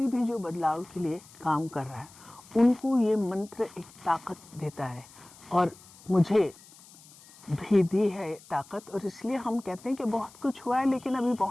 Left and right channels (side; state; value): left; noise; hiss, 23 dB below the sound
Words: भी जो बदलाव के लिए काम कर रहा है उनको ये मंत्र एक ताकत देता है, और मुझे भी दी है ताकत। और इसलिए हम कहते हैं कि बहुत कुछ हुआ है, लेकिन अभी